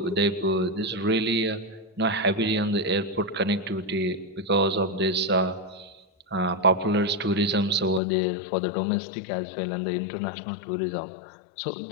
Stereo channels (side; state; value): right; drops out; at 8.0 s